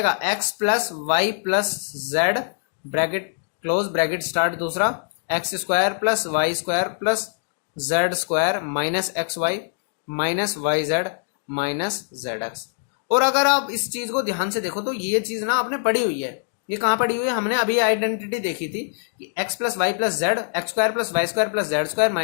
x plus y plus z bracket close bracket start, दूसरा x square plus y square plus z square minus x y minus y z minus z x. और अगर आप इस चीज को ध्यान से देखो तो ये चीज ना आपने पढ़ी हुई है। ये कहाँ पढ़ी हुई है? हमने अभी आइडेंटिटी देखी थी कि x plus y plus z x square plus y square plus z square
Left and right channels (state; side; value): silent; right; digital silence